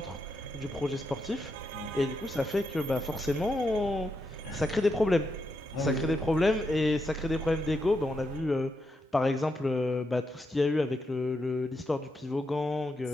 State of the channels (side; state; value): both; normal; correlation 0.83